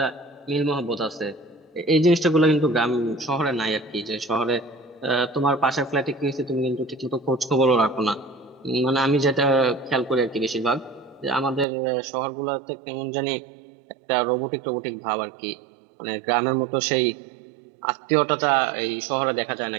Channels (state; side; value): drops out; left; at 11.7 s